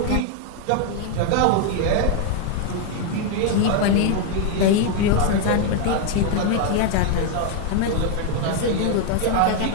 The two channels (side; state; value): both; different; correlation 0.00